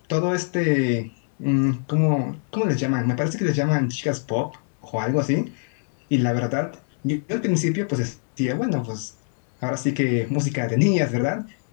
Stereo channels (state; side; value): silent; right; 63 dB below the other